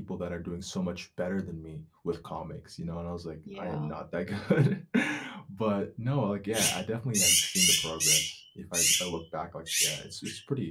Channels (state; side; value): identical; both; correlation 1.00